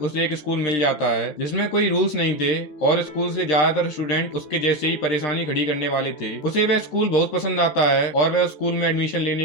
एक स्कूल मिल जाता है जिसमें कोई रूल्स नहीं थे और स्कूल से ज्यादातर स्टूडेंट उसके जैसे ही परेशानी खड़ी करने वाले थे। उसे वह स्कूल बहुत पसंद आता है और वह स्कूल में एडमिशन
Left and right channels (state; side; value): late; right; 14 ms